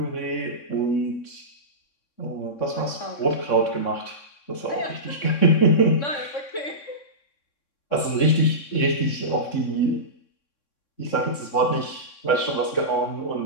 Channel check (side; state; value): right; late; 3.6 ms